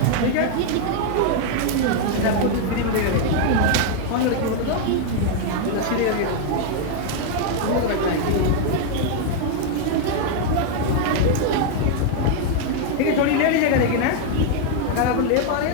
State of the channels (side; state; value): both; different; correlation 0.00